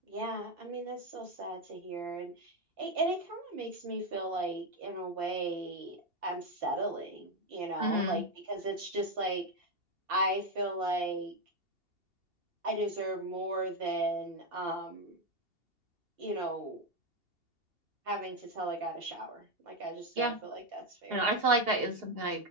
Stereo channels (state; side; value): late; left; 2.7 ms